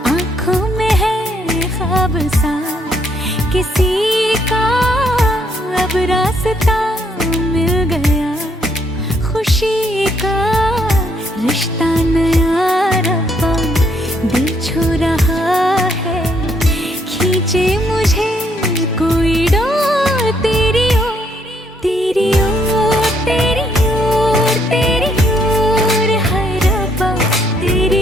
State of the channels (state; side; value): normal; both; correlation 0.71